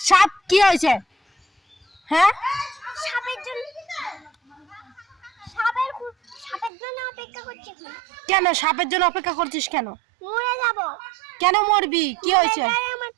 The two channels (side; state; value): left; drops out; at 6.7 s